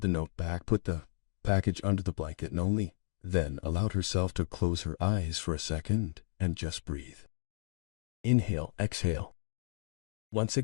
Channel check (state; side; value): silent; right; digital silence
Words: the note back, put the package under the blanket, and only then allowed herself to close her eyes for a second and just breathe. Inhale, exhale. Once